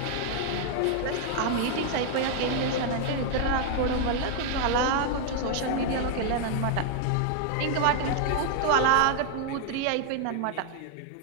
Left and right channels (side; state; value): both; different; correlation 0.00